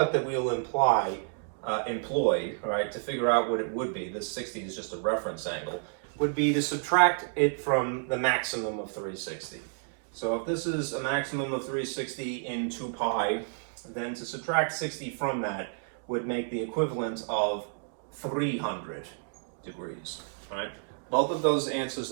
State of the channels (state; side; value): silent; left; digital silence